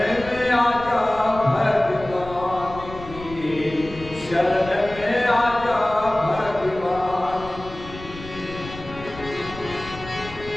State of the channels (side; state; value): left; noise; rumble, 15 dB below the sound